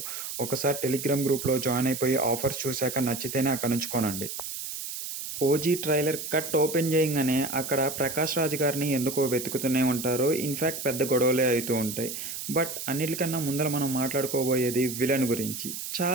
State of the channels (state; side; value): noise; right; hiss, 7 dB below the sound